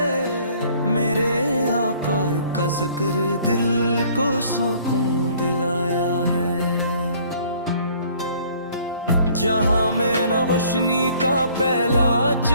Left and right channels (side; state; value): both; inverted; correlation -0.57